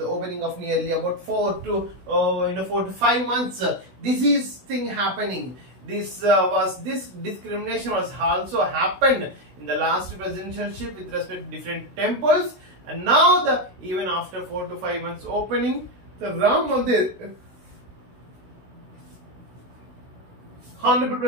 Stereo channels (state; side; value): late; left; 16 ms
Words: opening of nearly about 4 to 5 months. This is thing happening. This discrimination was also happened in the last presidentialship with respect to different temples, and now even after 4 to 5 months opening, the Ram Mandir, Honorable